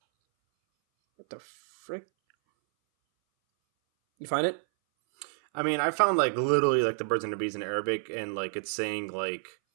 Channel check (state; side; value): silent; left; 59 dB below the other